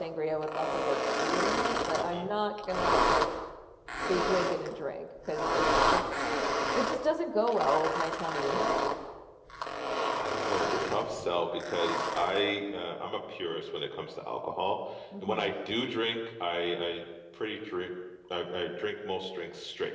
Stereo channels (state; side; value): identical; both; correlation 1.00